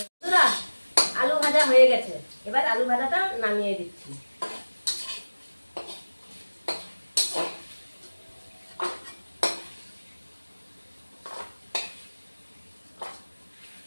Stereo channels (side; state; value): both; inverted; correlation -1.00